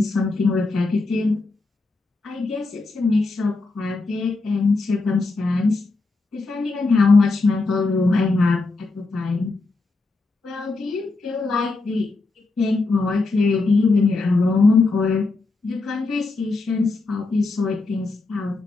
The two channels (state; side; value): quieter; right; 3.5 dB